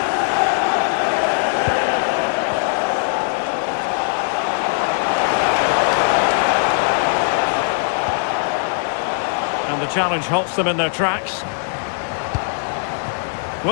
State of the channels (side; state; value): right; silent; 66 dB below the other